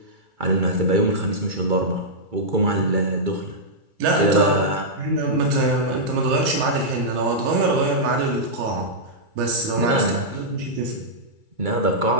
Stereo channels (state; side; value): late; left; 2.3 ms